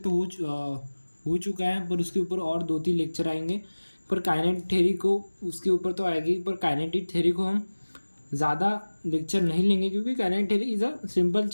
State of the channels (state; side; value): inverted; both; correlation -1.00